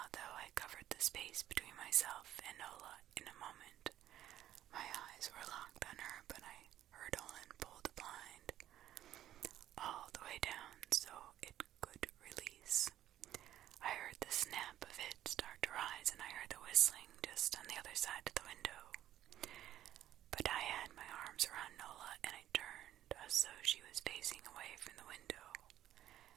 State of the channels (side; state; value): left; quieter; 12.5 dB